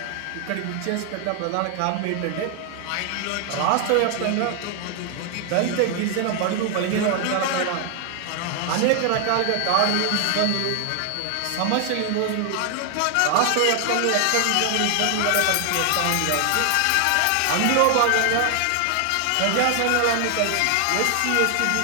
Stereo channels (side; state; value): both; different; correlation 0.00